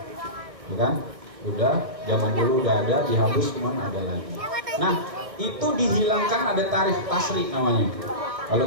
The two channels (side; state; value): left; late; 1.5 ms